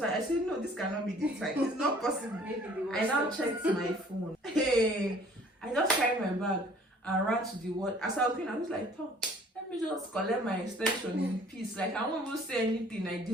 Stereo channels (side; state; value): both; normal; correlation 0.54